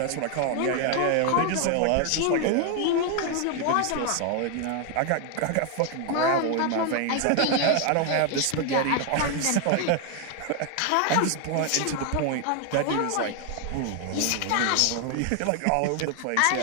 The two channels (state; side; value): different; both; correlation 0.01